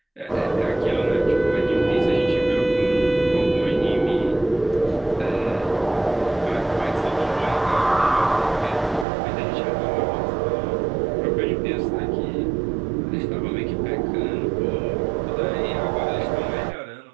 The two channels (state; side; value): drops out; left; at 9.1 s